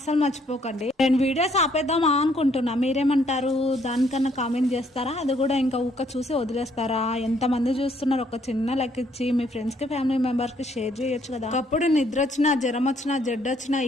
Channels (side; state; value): both; normal; correlation 0.67